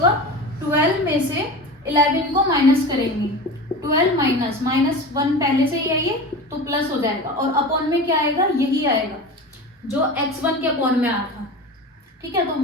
12 में से 11 को माइनस करेंगे, 12 माइनस माइनस 1 पहले से ही है ये, तो प्लस हो जाएगा, और अपॉन में क्या आएगा, यही आएगा जो x1 के अपॉन में आया था। ठीक है,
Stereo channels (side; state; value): both; normal; correlation 0.30